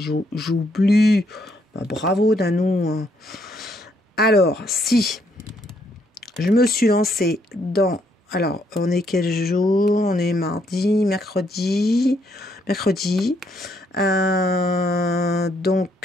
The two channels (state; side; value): normal; both; correlation 0.72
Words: j'oublie. Bravo Danou. Hein. Alors, si je me suis lancée dans... Alors, on est quel jour? On est mardi, mercredi. Donc,